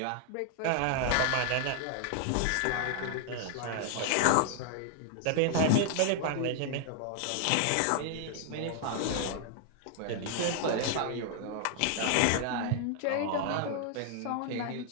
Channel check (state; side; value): different; both; correlation 0.00